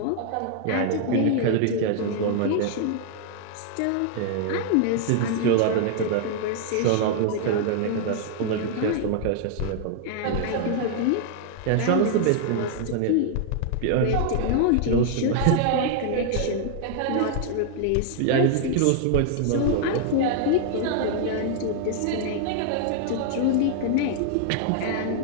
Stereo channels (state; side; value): different; both; correlation 0.00